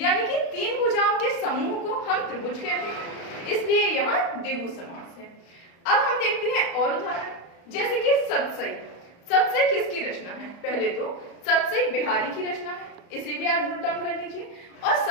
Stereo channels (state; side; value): late; right; 34 ms